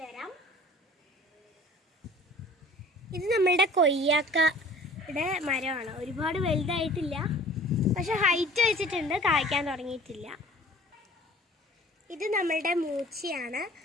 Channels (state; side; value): normal; both; correlation 0.48